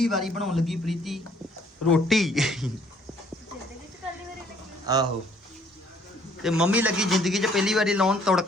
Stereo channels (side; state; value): both; normal; correlation 0.62